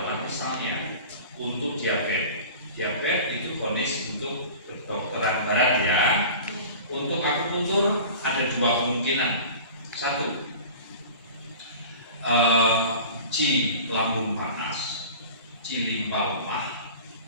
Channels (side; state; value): both; inverted; correlation -0.39